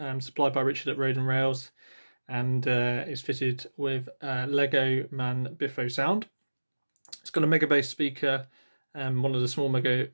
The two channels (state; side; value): inverted; both; correlation -1.00